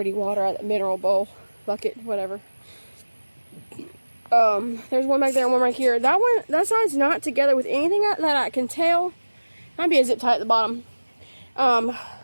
water out of the mineral bowl, bucket, whatever. There's one back there and one right here. That side's not together with anything that I can tell. Might be a zip tie at the bottom.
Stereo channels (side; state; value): both; inverted; correlation -1.00